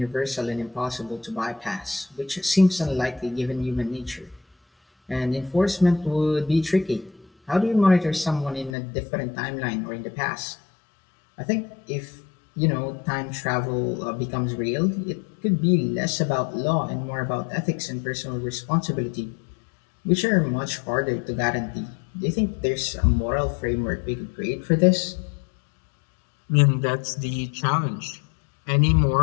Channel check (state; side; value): drops out; right; at 8.7 s